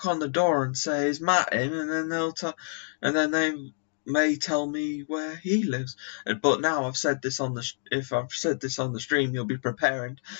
on the door and say, "Is Matt in?" and then they may tell me where he lives. But now I've said this on if I've said this on the stream, you'll be preparing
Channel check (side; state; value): right; silent; digital silence